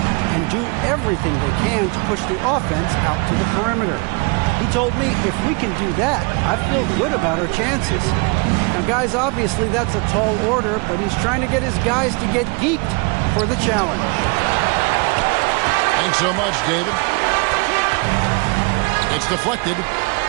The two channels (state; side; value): quieter; left; 30.3 dB